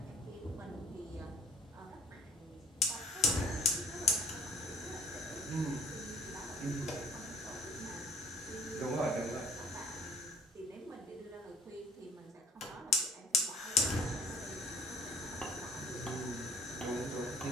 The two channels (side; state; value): both; normal; correlation 0.54